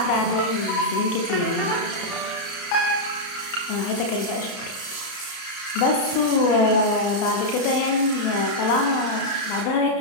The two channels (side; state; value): right; late; 32 ms